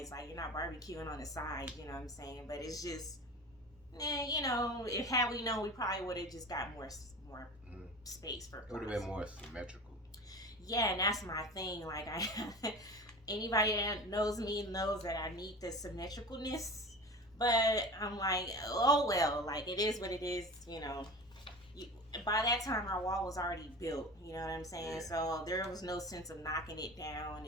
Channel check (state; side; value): normal; both; correlation 0.33